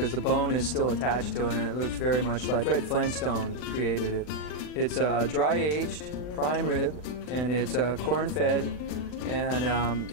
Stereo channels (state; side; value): late; right; 40 ms